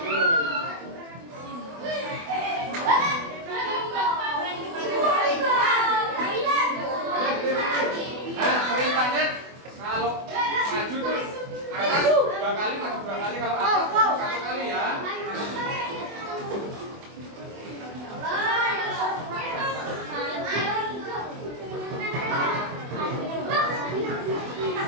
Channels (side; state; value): left; late; 24 ms